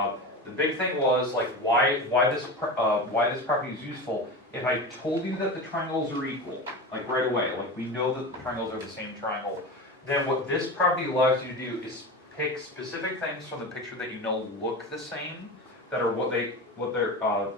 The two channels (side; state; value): both; normal; correlation 0.27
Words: The big thing was like why this property is useful. If I told you that the triangles are equal, like right away, like we know that the triangles are the same triangle, then what this property allows you to do is pick specific things from the picture that you know look the same, that are